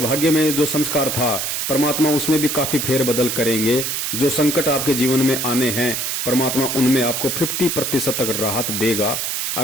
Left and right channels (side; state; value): right; noise; hiss, 1 dB below the sound